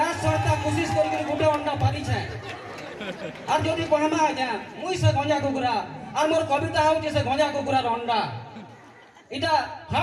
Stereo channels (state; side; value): identical; both; correlation 1.00